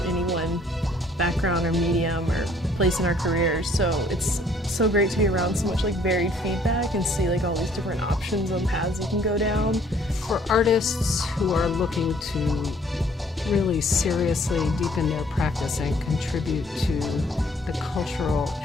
any one background or medium or place in our careers, so it's so great to be around so much like varied feedback and see like all these different options on paths you can go down. For artists who are looking to really seriously deepen their practice and contribute to the cultural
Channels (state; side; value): normal; both; correlation 0.61